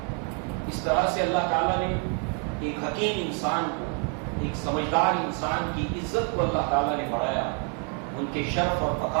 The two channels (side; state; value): left; quieter; 39.8 dB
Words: اس طرح سے اللہ تعالیٰ نے ایک حکیم انسان کو، ایک سمجھدار انسان کی عزت کو اللہ تعالیٰ نے بڑھایا، ان کے شرف اور